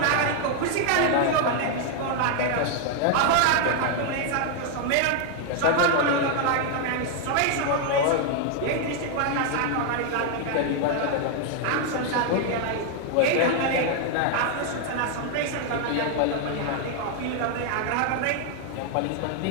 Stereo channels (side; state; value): both; different; correlation 0.00